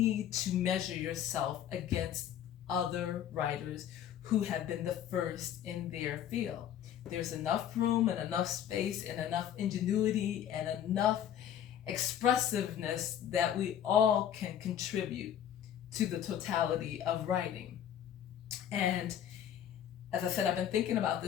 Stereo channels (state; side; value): quieter; right; 10.1 dB